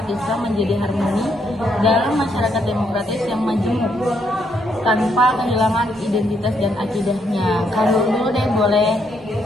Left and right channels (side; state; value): both; normal; correlation 0.74